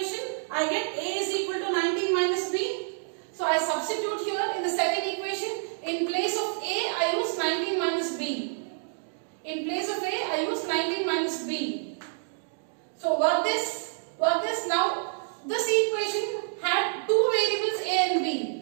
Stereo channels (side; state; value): left; silent; digital silence